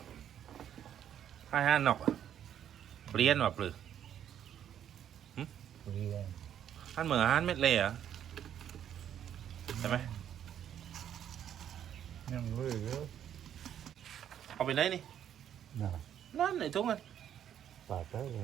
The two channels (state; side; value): quieter; left; 9.9 dB